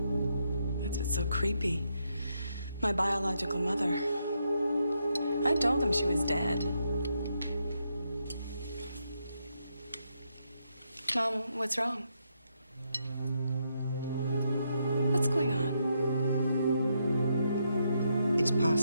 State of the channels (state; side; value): inverted; both; correlation -0.79